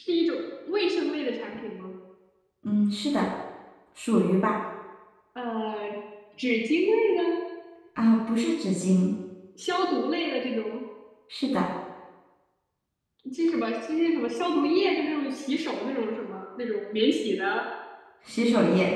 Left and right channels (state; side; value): identical; both; correlation 1.00